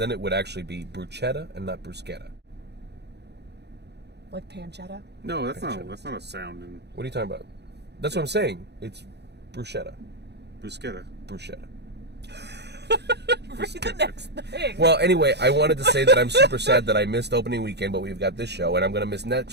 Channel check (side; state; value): left; late; 0.49 ms